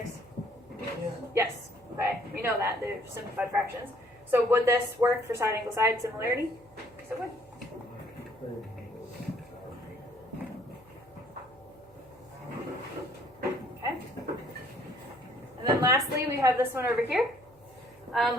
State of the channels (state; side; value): noise; right; hum, 28 dB below the sound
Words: Yes. Okay. We know that. They're simplified fractions. So would this work for side, angle, side similarity? Yes, it would. Okay. And then lastly, we have this one over here.